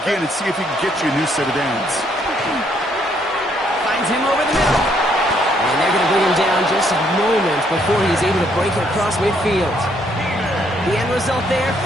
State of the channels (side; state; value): both; normal; correlation 0.70